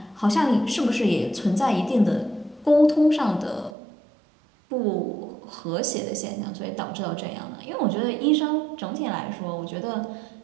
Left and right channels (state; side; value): drops out; left; at 3.7 s